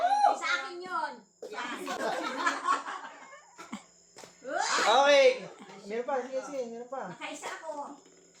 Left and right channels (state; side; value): identical; both; correlation 1.00